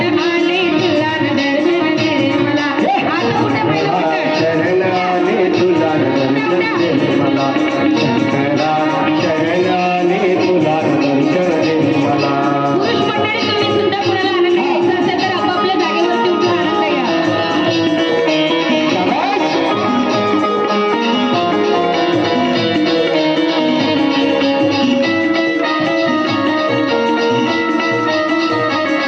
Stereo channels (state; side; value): identical; both; correlation 1.00